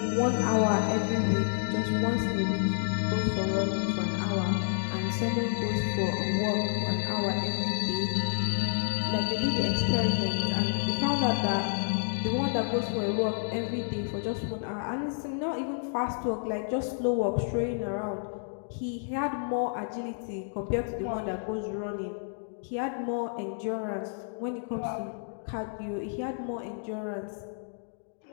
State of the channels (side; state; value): right; silent; digital silence